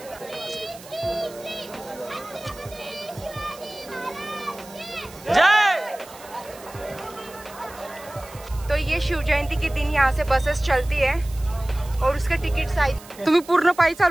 तो ये शिव जयंती के दिन यहाँ से बसेस चलती है और उसके तिकीट आहेत। तुम्ही पूर्ण पायी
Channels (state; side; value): noise; right; hiss, 19 dB below the sound